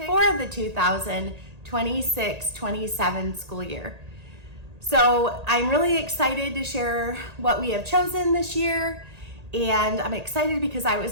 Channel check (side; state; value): left; late; 1.8 ms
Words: for the 2026-27 school year. So I'm really excited to share what we have chosen this year, and I'm excited because I